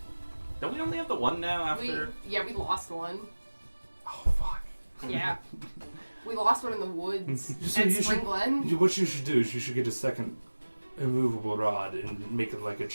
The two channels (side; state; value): both; inverted; correlation -1.00